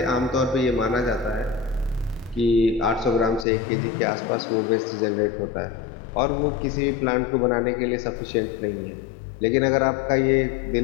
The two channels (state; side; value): drops out; right; at 3.5 s